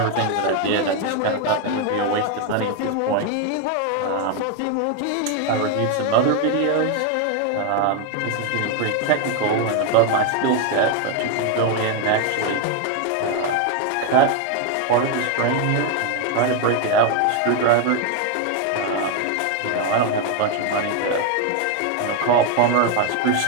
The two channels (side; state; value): both; different; correlation 0.01